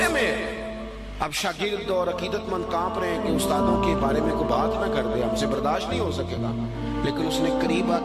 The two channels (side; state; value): both; identical; correlation 1.00